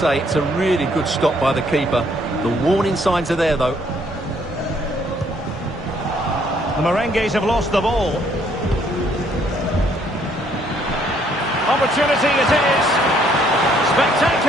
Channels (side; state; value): both; normal; correlation 0.66